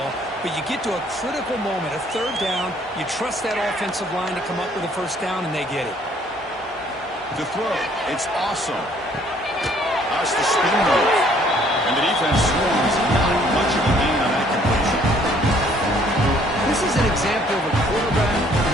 but you get to a critical moment, a third down. You trust that offensive line to come up with a first down, and they get it. To throw, it's awesome. That's the spin move. And the defense swarms. Not much of a gain on that completion. This is an example of a quarterback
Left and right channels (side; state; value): both; normal; correlation 0.61